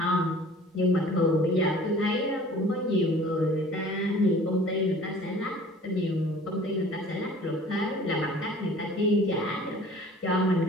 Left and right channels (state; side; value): normal; both; correlation 0.48